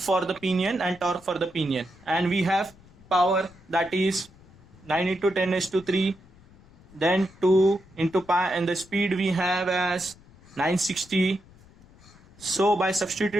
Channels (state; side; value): noise; left; rumble, 25 dB below the sound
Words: the pinion and torque for the pinion. And we have power, that is 9 into 10 raised to 3, then 2 into pi, and the speed we have as 960. So by